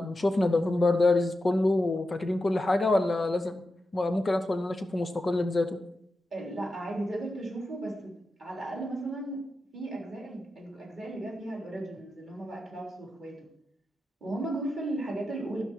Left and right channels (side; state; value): both; normal; correlation 0.90